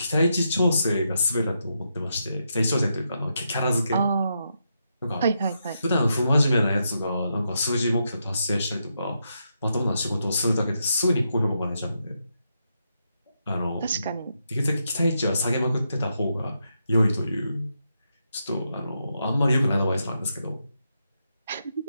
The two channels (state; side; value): inverted; both; correlation -0.82